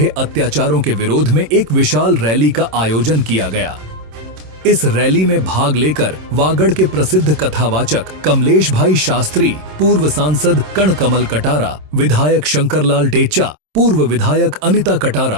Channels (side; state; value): left; late; 26 ms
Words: अत्याचारों के विरोध में एक विशाल रैली का आयोजन किया गया। इस रैली में भाग लेकर वागड़ के प्रसिद्ध कथावाचक कमलेश भाई शास्त्री, पूर्व सांसद कणकमल कटारा, विधायक शंकरलाल टेचा, पूर्व विधायक अनिता